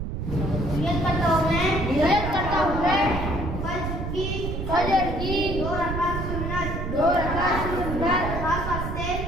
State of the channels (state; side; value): noise; right; rumble, 4 dB below the sound